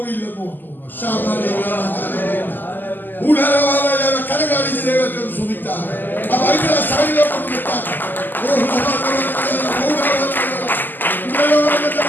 ഓർത്തു. കരകാണിച്ച് ദൈവത്തെ സുഖിച്ചാൽ ആ ബൈബിളെ സൈഡിലോട്ട് നിർത്താൻ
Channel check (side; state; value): right; late; 0.089 ms